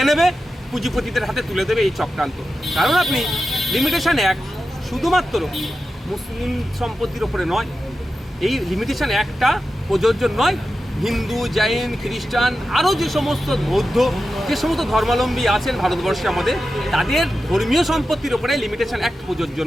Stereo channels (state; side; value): normal; both; correlation 0.91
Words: নেবে, পুঁজিপতিদের হাতে তুলে দেবে এই চক্রান্ত। কারণ আপনি লিমিটেশন অ্যাক্ট শুধুমাত্র মুসলিম সম্পত্তির ওপরে নয়, এই লিমিটেশন অ্যাক্টটা প্রযোজ্য নয় হিন্দু, জৈন, খ্রিস্টান, আরও যে সমস্ত বৌদ্ধ, যে সমস্ত ধর্মাবলম্বী আছেন ভারতবর্ষে আমাদের, তাদের ধর্মীয় সম্পত্তির ওপরে লিমিটেশন অ্যাক্ট প্রযোজ্য